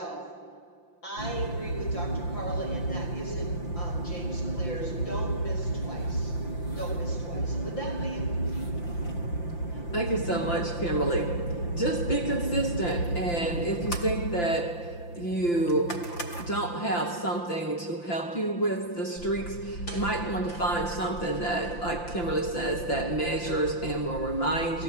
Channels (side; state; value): right; late; 5.8 ms